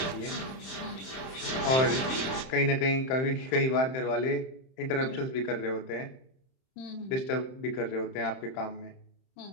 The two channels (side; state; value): right; late; 31 ms